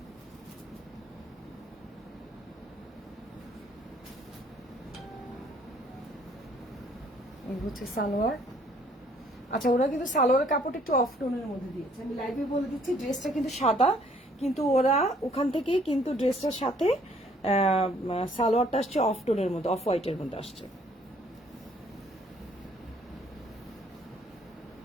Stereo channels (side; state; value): both; normal; correlation 0.62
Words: এই হচ্ছে সালোয়ার। আচ্ছা, ওরা কিন্তু সালোয়ারের কাপড়টা একটু অফ টোনের মধ্যে দিয়েছে, আমি লাইভে বলে দিচ্ছি। ড্রেসটা কিন্তু সাদা, কিন্তু ওরা ওখান থেকেই কিন্তু ড্রেসটার সাথে সালোয়ারটা আসছে অফ টোনের মধ্যে, অফ হোয়াইটের মধ্যে আসছে।